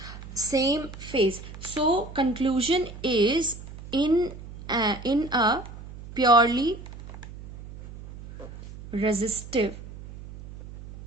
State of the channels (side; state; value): right; noise; hum, 14 dB below the sound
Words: same phase. So conclusion is, in a purely resistive